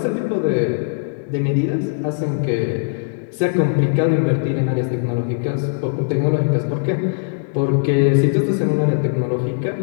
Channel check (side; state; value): right; silent; 66 dB below the other